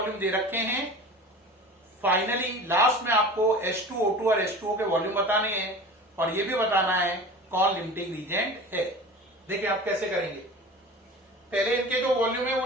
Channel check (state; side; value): normal; both; correlation 0.37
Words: दे रखे हैं, फाइनली लास्ट में आपको H2, O2 और H2O के वॉल्यूम बताने हैं और ये भी बताना है कौन लिमिटिंग रीजेंट है। देखिए आप कैसे करेंगे। पहले इनके जो वॉल्यूम है वो